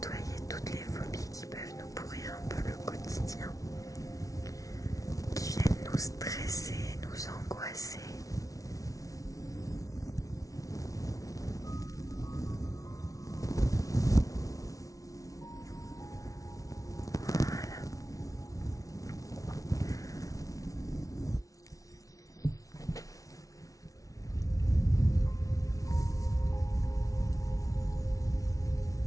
toutes les phobies qui peuvent nous pourrir un peu le quotidien, qui viennent nous stresser, nous angoisser. Voilà.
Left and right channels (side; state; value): right; late; 0.17 ms